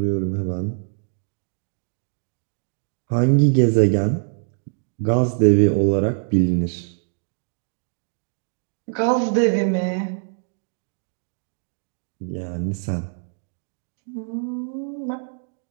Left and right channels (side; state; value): left; silent; 63 dB below the other